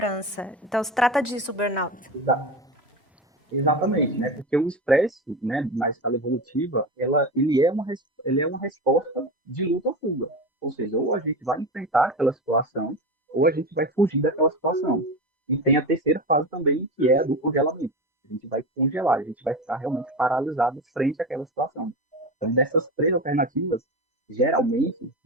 Então, se trata disso, o burnout. Exatamente, né? Porque o estresse, né, na escala evolutiva, ele é uma resposta de luta ou fuga. Ou seja, ou a gente vai enfrentar aquela situação, ou a gente vai fugir daquela situação. E tem a terceira fase também, que é a do congelamento. A gente vai congelar, a gente vai ficar realmente paralisado frente àquela situação. Então, dessas três alternativas, geralmente,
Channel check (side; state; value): both; normal; correlation 0.24